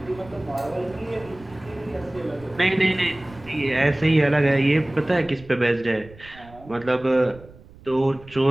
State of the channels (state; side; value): noise; right; rumble, 22 dB below the sound